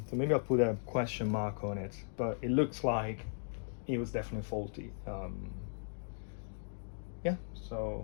maybe I'll put a question mark on it, but it looks like it was definitely faulty.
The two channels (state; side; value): silent; right; digital silence